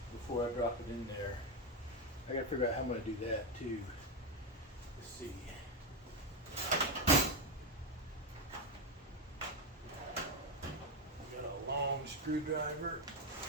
before I drop it in there. I gotta figure out how I'm gonna do that too. Let's see. Got a long screwdriver.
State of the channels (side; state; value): both; normal; correlation 0.09